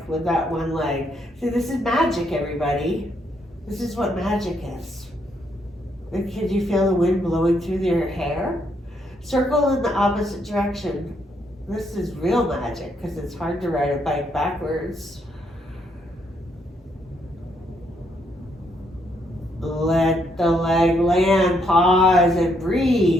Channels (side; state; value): both; normal; correlation 0.74